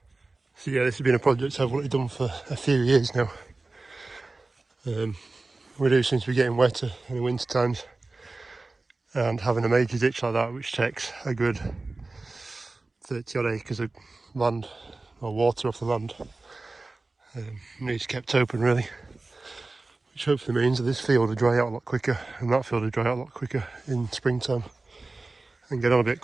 So yeah, this has been a project I've wanted done for a few years now. We do seem to be getting wetter in the winter times, and having a major ditch like that, which takes a good 30 odd acres of land or water off the land, needs kept open really, which hopefully means that this field will dry out a lot quicker and that field will dry out a lot quicker in springtime and get on a bit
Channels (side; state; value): left; quieter; 3.3 dB